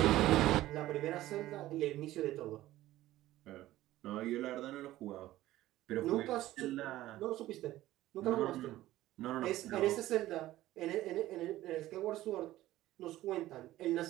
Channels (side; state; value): left; quieter; 15.4 dB